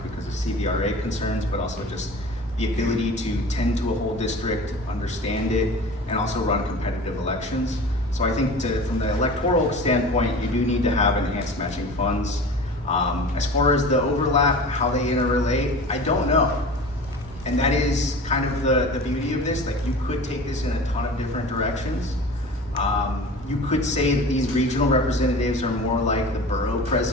because of CVRA concerns, but also just the ability to tend to a whole district, understand it, and also run competitive elections. So I think from the electoral standpoint, you do need to have enhanced matching funds. As far as the overlap, how they interrelate, I don't know. And that is kind of the beauty of this. Like, you could take this in a ton of different directions. You could say that these regional representatives are more like the borough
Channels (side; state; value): both; normal; correlation 0.37